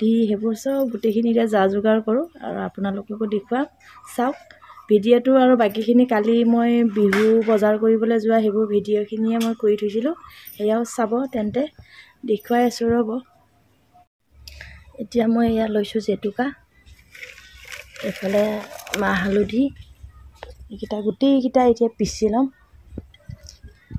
সেইবোৰ চব গোটেইখিনিতে যা যোগাৰ কৰোঁ আৰু আপোনালোককো দেখুৱাম। চাওক ভিডিঅ'টো, আৰু বাকীখিনি কালি মই বিহু বজাৰ কৰিবলৈ যোৱা সেইবোৰ ভিডিঅ'খিনিয়ে মই কৰি থৈছিলোঁ, সেয়াও চাব। তেন্তে দেখুৱাই আছোঁ ৰ'ব। এতিয়া মই এয়া লৈছোঁ জেতুকা, এইফালে মাহ হালধি, এইকেইটা গোটেইকেইটা এতিয়া পিচি ল'ম।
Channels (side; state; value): both; identical; correlation 1.00